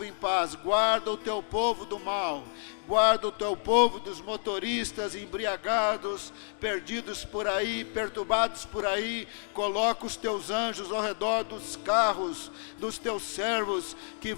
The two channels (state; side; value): silent; right; 58 dB below the other